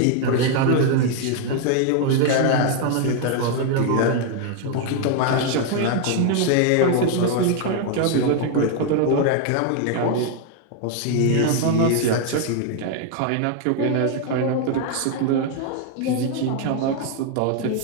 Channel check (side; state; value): both; different; correlation 0.00